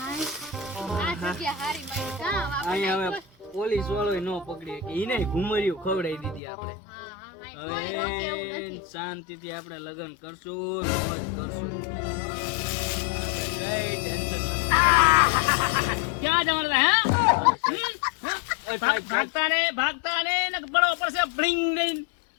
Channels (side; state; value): right; drops out; at 6.4 s